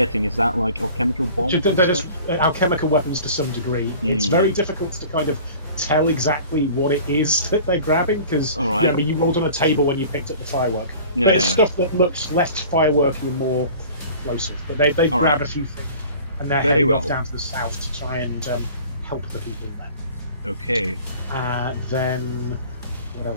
Is that like alchemical bombs? They're just alchemical weapons to some degree. It's very difficult to kind of tell exactly what it is that they're grabbing because remember you rolled on a table when you picked up the firework. There's stuff that looks less fireworky and more explosive, but they grab a few things and they're heading off down to the south to try and help the people there. Okay. Then what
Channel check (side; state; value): both; inverted; correlation -0.44